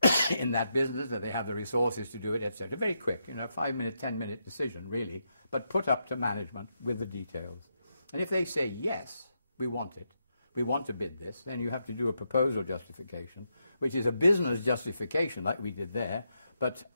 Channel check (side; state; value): both; inverted; correlation -0.83